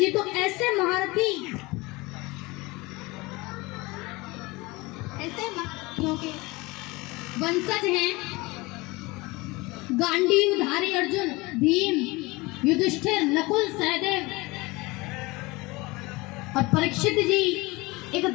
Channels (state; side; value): quieter; right; 23.2 dB